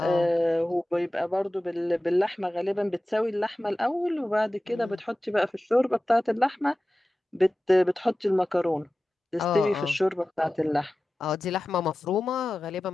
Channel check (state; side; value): normal; both; correlation 0.95